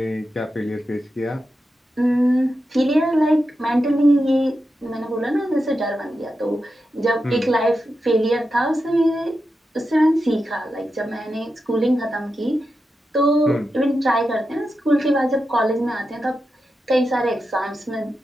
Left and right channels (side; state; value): both; normal; correlation 0.89